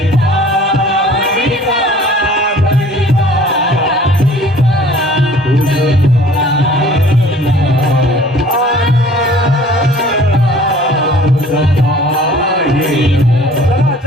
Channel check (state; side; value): normal; both; correlation 0.50